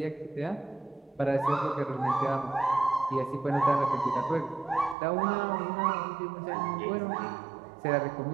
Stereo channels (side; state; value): left; drops out; at 5.0 s